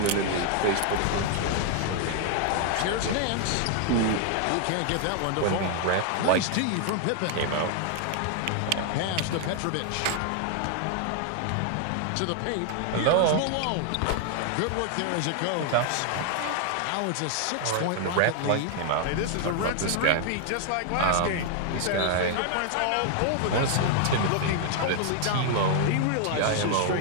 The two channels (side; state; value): both; different; correlation 0.00